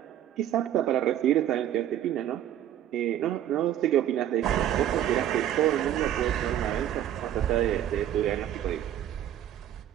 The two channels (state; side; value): quieter; left; 11.2 dB